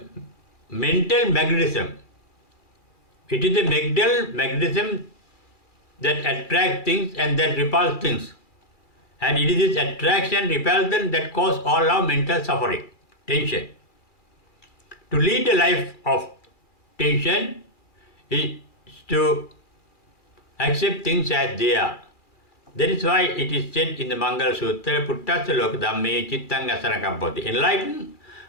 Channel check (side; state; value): right; late; 2.3 ms